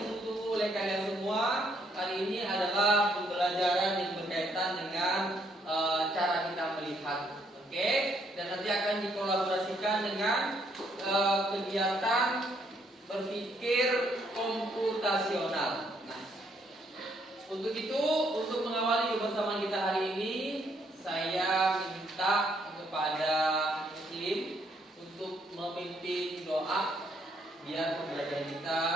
oleh kalian semua. Hari ini adalah pembelajaran yang berkaitan dengan cara kita melihat, oke? Dan nanti akan dikolaborasikan dengan kegiatan berpikir komputasional. Nah, untuk itu, untuk mengawali kebersamaan kita hari ini, saya minta kepada Muslim untuk memimpin doa biar pembelajaran kita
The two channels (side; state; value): both; normal; correlation 0.70